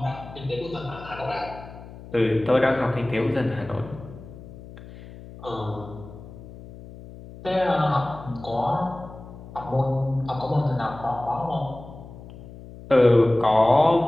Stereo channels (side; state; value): left; noise; hum, 16 dB below the sound